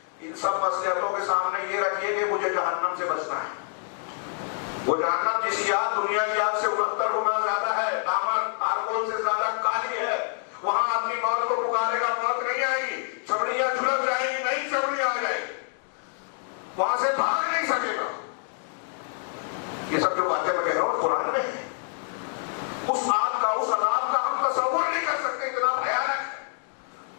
ان سب مصلحتوں کے سامنے یہ رکھیے کہ مجھے جہنم سے بچنا ہے. وہ جہنم جس کی آگ دنیا کی آگ سے 69 گنا زیادہ ہے, دامن آرکول سے زیادہ کالی ہے, وہاں اپنی موت کو پکارے گا, موت نہیں آئے گی, چمڑیاں جھلک جائیں گی, نئی چمڑیاں آ جائیں گی, وہاں سے بھاگ نہیں سکے گا. یہ سب جو باتیں میں کہہ رہا ہوں قرآن میں ہے. اس آگ کا, اس عذاب کا ہم تصور نہیں کر سکتے, اتنا بھیانک ہے.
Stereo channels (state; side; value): silent; right; 60 dB below the other